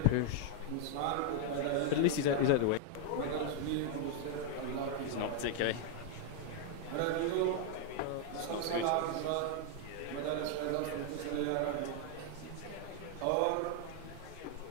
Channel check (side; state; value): both; different; correlation 0.00